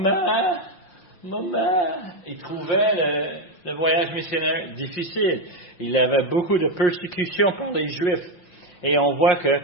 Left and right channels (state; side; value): late; right; 5.6 ms